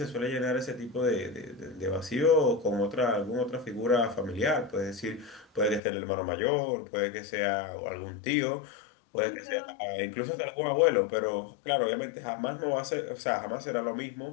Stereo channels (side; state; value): right; drops out; at 5.8 s